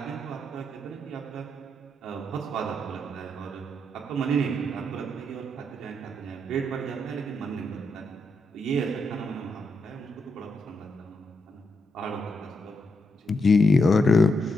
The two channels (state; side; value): normal; both; correlation 0.81